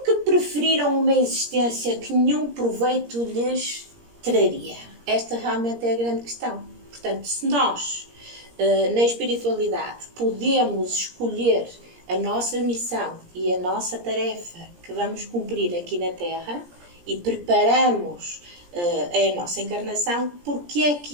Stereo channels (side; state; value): left; late; 17 ms